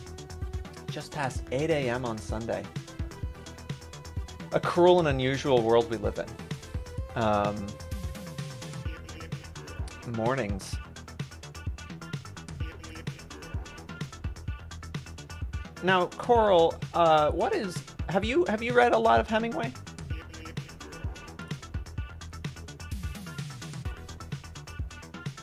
Just past 8 a.m. on Sunday. A cruel and unusual world we live in. Mornings. Now, Coral, have you read a lot of Hemingway?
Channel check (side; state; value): both; identical; correlation 1.00